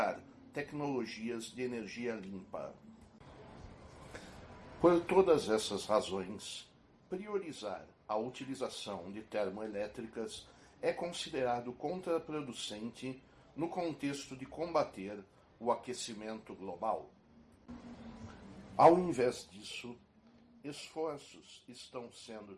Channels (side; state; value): both; identical; correlation 1.00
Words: tecnologias de energia limpa. Por todas essas razões, priorizar a utilização de termoelétricas é considerado contraproducente no contexto de combater o aquecimento global. Ao invés disso, esforços estão sendo